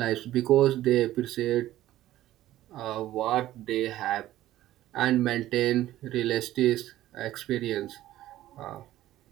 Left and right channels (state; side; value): quieter; left; 14.4 dB